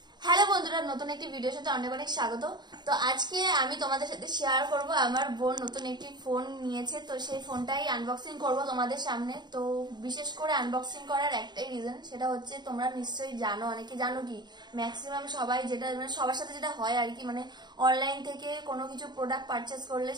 হ্যালো বন্ধুরা, নতুন একটি ভিডিওর সাথে অনেক অনেক স্বাগত। তো আজকে আমি তোমাদের সাথে শেয়ার করব আমার বোন নতুন একটি ফোন নিয়েছে, তো সেই ফোনটাই আনবক্সিং করব তোমাদের সামনে। তো বিশেষ করে আনবক্সিং করার একটাই রিজন, সেটা হচ্ছে তোমরা নিশ্চয়ই জানো, অনেকে জানো কি ম্যাক্সিমাম সবাই যেটা মানে সবার সাথে যেটা হয় আর কি, মানে অনলাইন থেকে কোনো কিছু প্রোডাক্ট পারচেস করলে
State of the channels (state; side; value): late; left; 0.21 ms